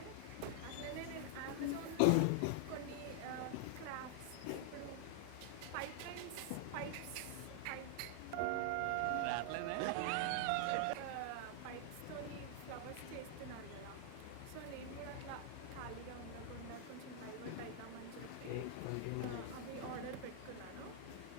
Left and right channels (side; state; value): both; different; correlation 0.00